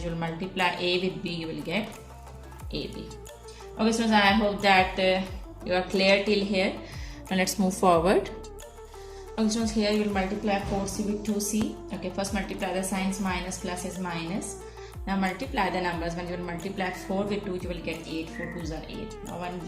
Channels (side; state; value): both; identical; correlation 1.00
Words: will multiply a with b, you will get ab. Okay, so I hope that you are clear till here. Now let's move forward. Okay, so here you will multiply 4c with 2c. Okay, first multiply the signs, minus plus is minus. Now multiply the numbers. When you will multiply 4 with 2, you will get 8. 4 2s are